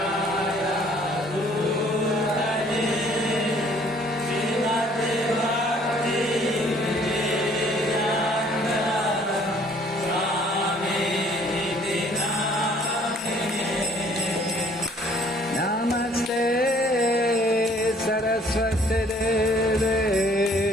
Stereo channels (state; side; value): normal; both; correlation 0.59